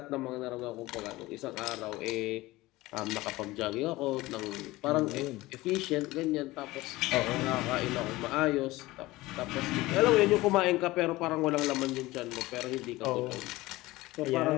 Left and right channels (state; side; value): quieter; right; 19.2 dB